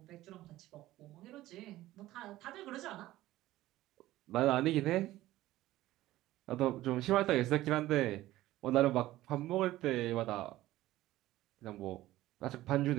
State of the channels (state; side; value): quieter; left; 15.9 dB